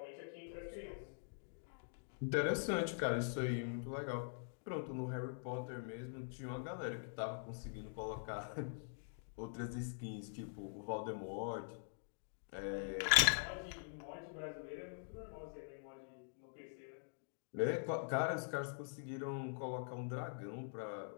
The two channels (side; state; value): right; silent; digital silence